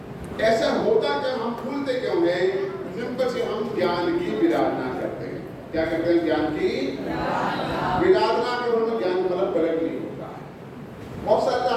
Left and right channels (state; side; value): identical; both; correlation 1.00